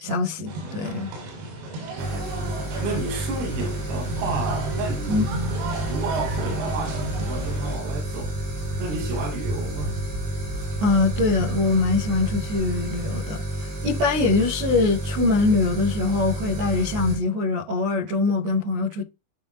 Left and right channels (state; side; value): late; left; 20 ms